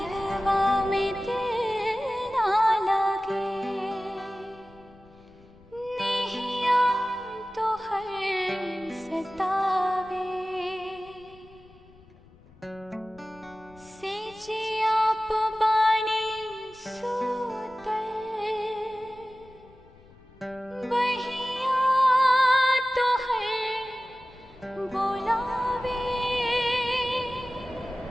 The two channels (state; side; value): noise; left; rumble, 25 dB below the sound